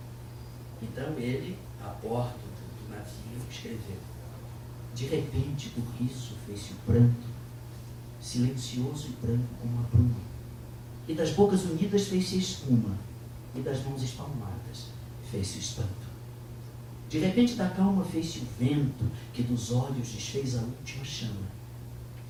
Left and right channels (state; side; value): identical; both; correlation 1.00